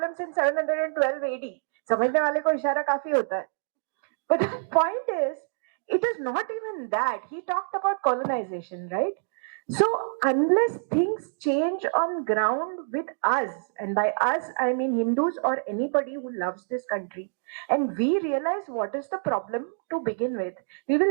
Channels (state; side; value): silent; left; digital silence